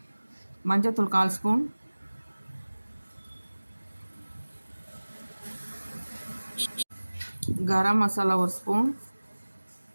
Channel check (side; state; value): both; inverted; correlation -1.00